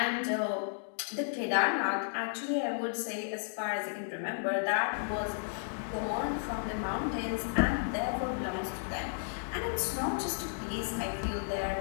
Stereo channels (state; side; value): silent; right; digital silence